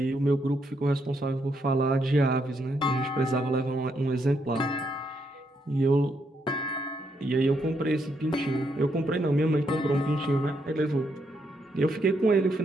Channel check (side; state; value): both; normal; correlation 0.77